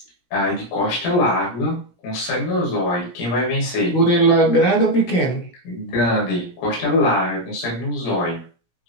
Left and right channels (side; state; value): right; late; 17 ms